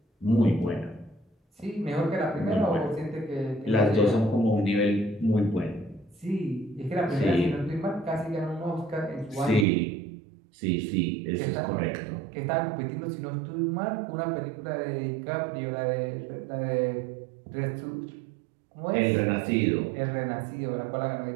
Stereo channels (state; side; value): drops out; left; at 9.7 s